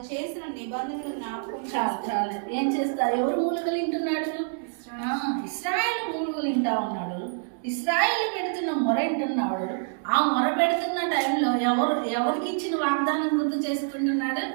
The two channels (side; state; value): left; silent; digital silence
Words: చేసిన నిబంధనలు జ్ఞాపకం. చాలా ఏం చేస్తారు? ఎవరు మూలుగలు వింటున్నాడు? ఇశ్రాయేలు మూలుగలు వింటా ఉన్నాడు. ఇశ్రాయేలు పెడుతున్న మొర వింటున్నాడు. ఆ మొర పెడుతున్న టైంలో ఎవరికి ఇచ్చిన వాగ్దానం గుర్తు చేసుకుంటున్నాడు?